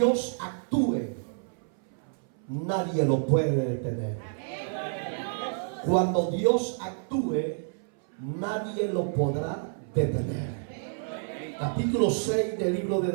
actúe, nadie lo puede detener. Cuando Dios actúe, nadie lo podrá detener. Capítulo 6 del libro de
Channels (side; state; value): left; silent; 59 dB below the other